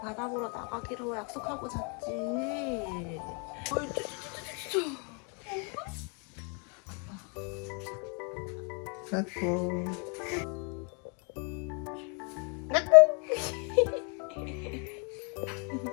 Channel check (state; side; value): quieter; right; 36.5 dB